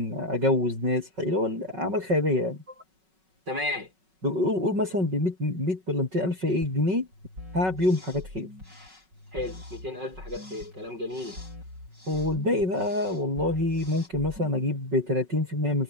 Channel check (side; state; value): left; late; 5.4 ms